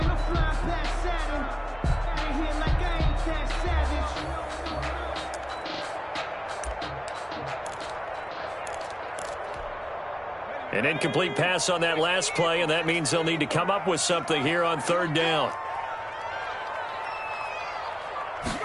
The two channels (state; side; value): identical; both; correlation 1.00